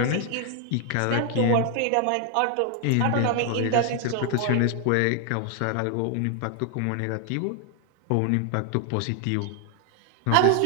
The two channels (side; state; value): both; different; correlation 0.01